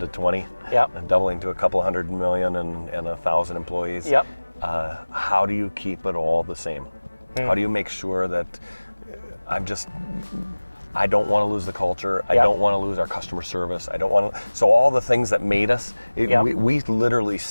20. And doubling to a couple $100 million and 1,000 employees. How do you keep it all the same? How do you make sure that I don't want to lose the culture. I don't want to lose our customer service. I don't want to. So all the things that made us, we literally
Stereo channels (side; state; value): both; inverted; correlation -1.00